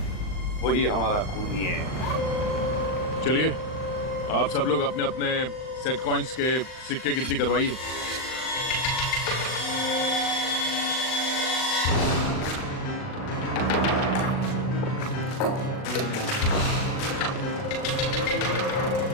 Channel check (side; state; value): right; late; 39 ms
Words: वही हमारा खूनी है। चलिए आप सब लोग अपने अपने सेट कॉइन्स के सिक्के गिनती करवाइए।